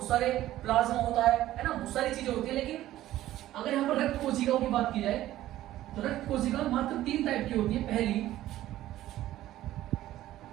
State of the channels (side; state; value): left; quieter; 14.3 dB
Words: सारे प्लाज्मा होता है ना, बहुत सारी चीजें होती है। लेकिन अगर यहाँ पर रक्त कोशिकाओं की बात की जाए तो रक्त कोशिकाएं मात्र 3 टाइप की होती है। पहली